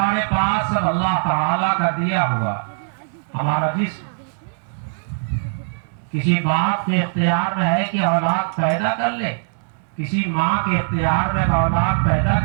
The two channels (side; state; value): left; silent; digital silence